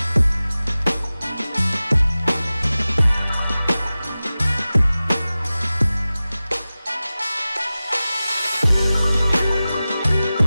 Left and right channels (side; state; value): both; inverted; correlation -0.96